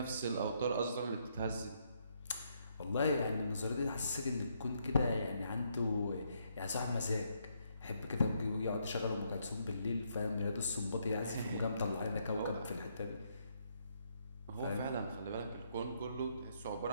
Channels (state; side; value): inverted; both; correlation -0.74